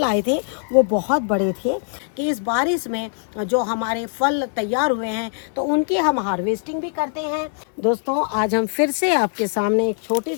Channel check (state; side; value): silent; right; 64 dB below the other